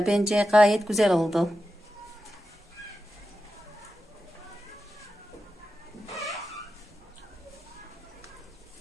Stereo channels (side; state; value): both; normal; correlation 0.90